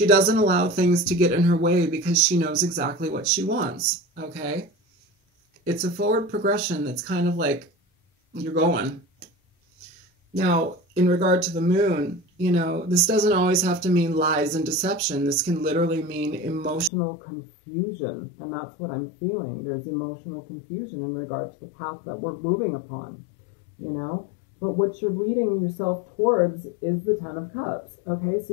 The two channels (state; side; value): drops out; right; at 16.9 s